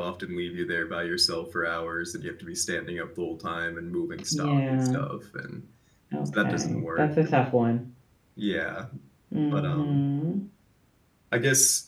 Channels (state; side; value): identical; both; correlation 1.00